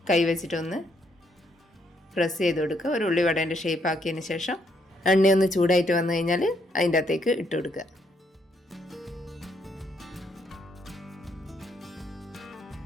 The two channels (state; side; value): normal; both; correlation 0.73